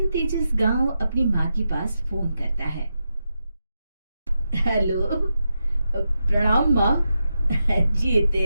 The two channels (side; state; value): both; inverted; correlation -0.87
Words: तेजस गांव अपनी माँ के पास फोन करता है। हेलो, प्रणाम माँ। जीते